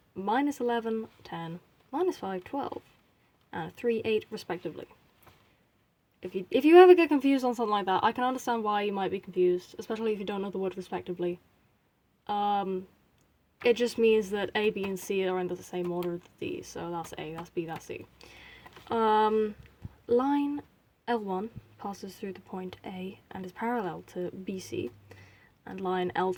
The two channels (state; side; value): identical; both; correlation 1.00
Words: -11, 10, -5, 12, and 3, 8 respectively. If you ever get confused on something like that, I can understand why you might be confused, especially if you don't know the word respectively. It just means that A, B, and C are in the same order as these, so that's A, that's B, that's C. Line L1 passes through the point A and is parallel to BC, and line